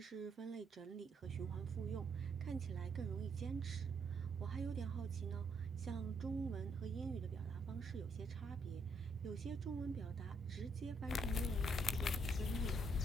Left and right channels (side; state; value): both; normal; correlation 0.73